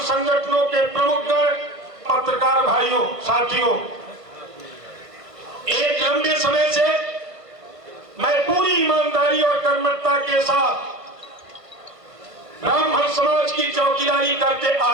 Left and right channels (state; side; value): late; left; 1.5 ms